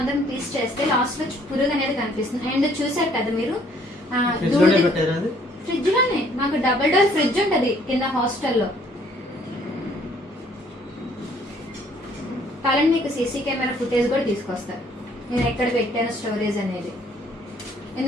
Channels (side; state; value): both; normal; correlation 0.62